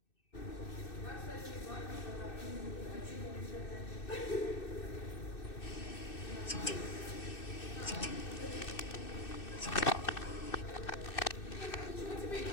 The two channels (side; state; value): right; late; 2.6 ms